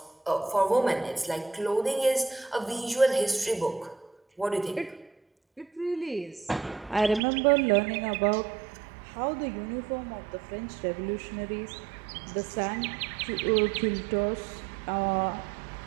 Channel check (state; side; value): drops out; left; at 7.2 s